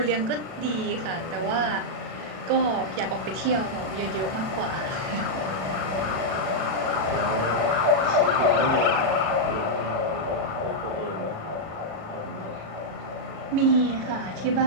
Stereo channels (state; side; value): late; left; 37 ms